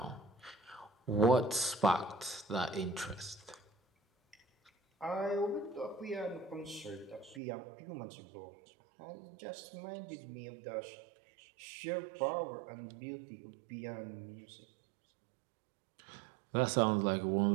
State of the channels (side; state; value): left; drops out; at 7.4 s